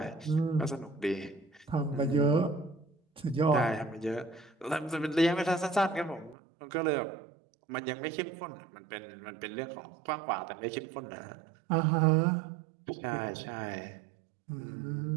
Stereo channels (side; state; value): left; drops out; at 6.4 s